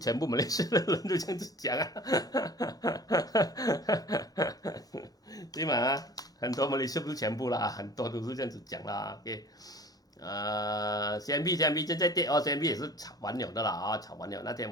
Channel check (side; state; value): both; normal; correlation 0.44